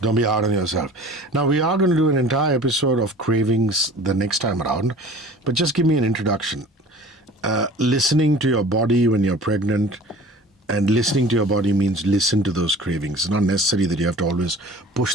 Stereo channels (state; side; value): normal; both; correlation 0.44